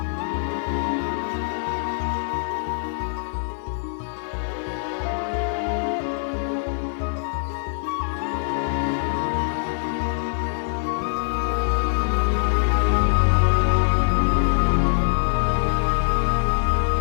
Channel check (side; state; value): right; silent; digital silence